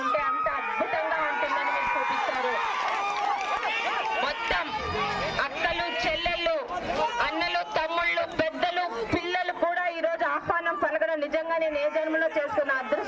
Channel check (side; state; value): both; identical; correlation 1.00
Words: ఉంటే అంత అద్భుతంగా ఉంటుందని మీరు చూపించారు. మొత్తం అక్కలు, చెల్లెళ్ళు, అన్నలు, తమ్ముళ్ళు, పెద్దలు, పిల్లలు కూడా ఈ రోజు ఆహ్వానం పలకడం నిజంగా నేను ఏ జన్మలో చేసుకున్న